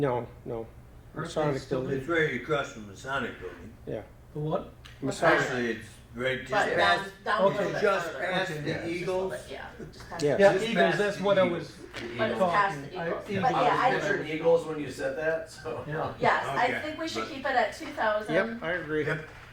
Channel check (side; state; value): both; identical; correlation 1.00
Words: Aren't they Masonic still building. it's right across from the Masonic building. Yeah. The what? Masonic. Actually, it's right just But past, down a okay, little bit just further. past Okay. the Just a little Eagles. bit, Yeah, just past Yeah. Yeah, Just Eagles, past that's the what I Eagles. was But it's past the talking. Eagles. Eagles. But yeah, I was I, picturing Eagles when you said that, so. Yeah. yes, I Okay. think we should But- keep it at 2,000. Yep, I agree. Yep.